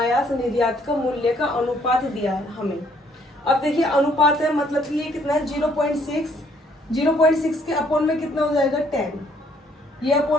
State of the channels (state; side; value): normal; both; correlation 0.65